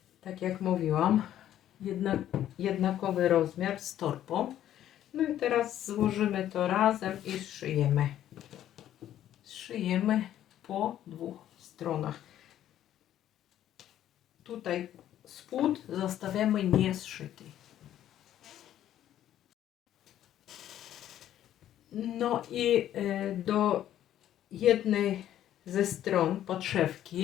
tak jak mówiłam, jednakowy rozmiar z torbą. No i teraz złożymy to razem i zszyjemy. Zszyjemy po dwóch stronach. Tutaj spód zostawiamy niezszyty. No i do jednej ze stron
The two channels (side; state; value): right; quieter; 11.7 dB